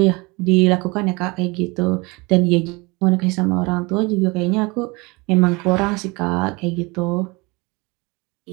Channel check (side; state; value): left; quieter; 25.9 dB